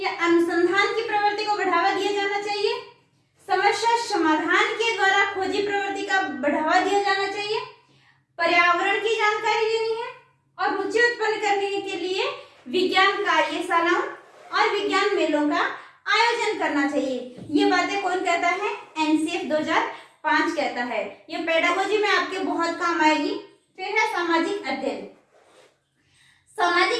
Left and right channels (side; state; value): both; identical; correlation 1.00